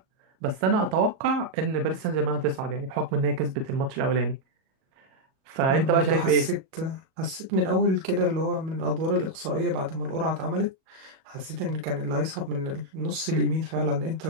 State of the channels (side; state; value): left; late; 37 ms